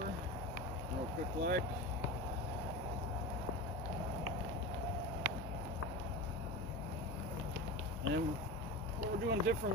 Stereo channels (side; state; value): both; normal; correlation 0.26